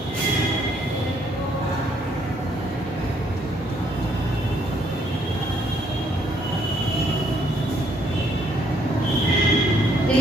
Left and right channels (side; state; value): both; normal; correlation 0.68